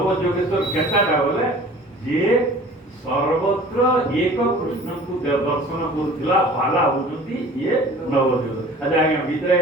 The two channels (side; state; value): both; normal; correlation 0.46